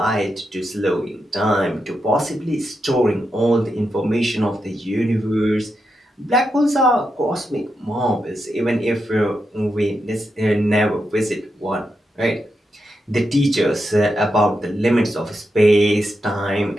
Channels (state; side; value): normal; both; correlation 0.85